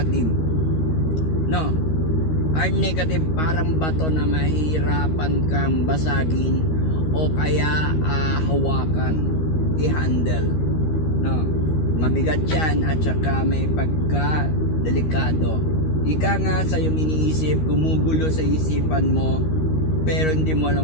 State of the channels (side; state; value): right; late; 13 ms